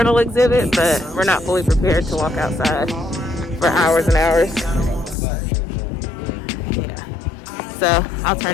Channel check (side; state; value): right; drops out; at 5.2 s